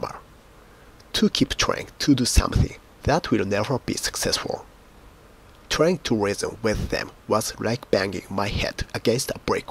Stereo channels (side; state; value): both; identical; correlation 1.00